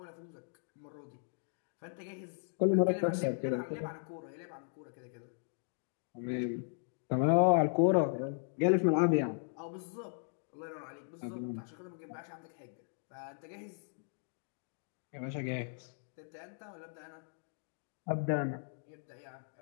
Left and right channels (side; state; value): right; silent; digital silence